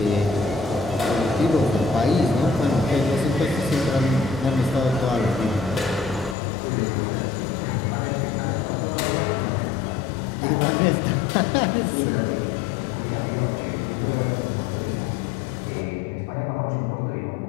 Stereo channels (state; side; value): drops out; right; at 6.4 s